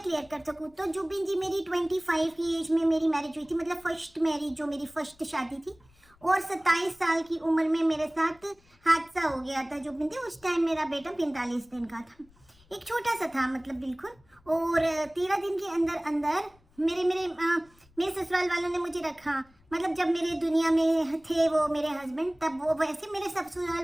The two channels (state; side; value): noise; left; rumble, 30 dB below the sound